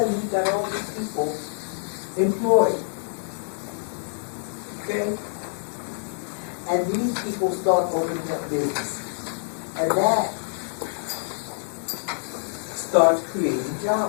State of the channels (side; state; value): right; silent; 61 dB below the other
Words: you've got all these people employed. Okay? And these people start